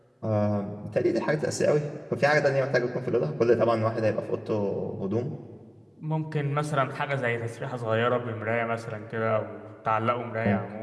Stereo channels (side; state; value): both; identical; correlation 1.00